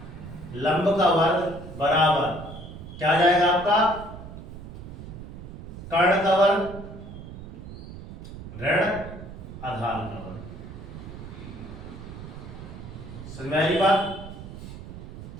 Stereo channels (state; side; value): noise; right; rumble, 12 dB below the sound